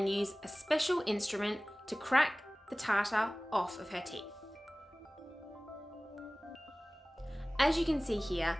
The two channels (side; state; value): both; normal; correlation 0.98